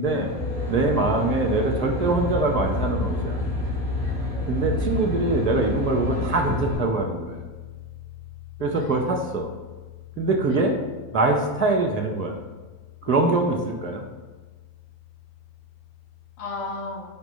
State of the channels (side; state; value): right; late; 12 ms